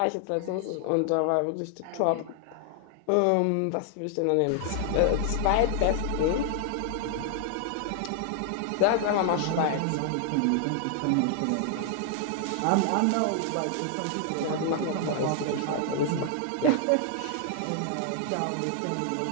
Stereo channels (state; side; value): different; both; correlation 0.00